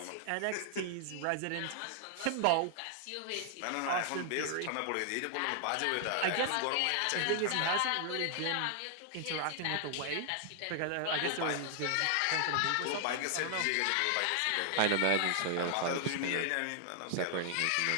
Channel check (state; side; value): different; both; correlation 0.00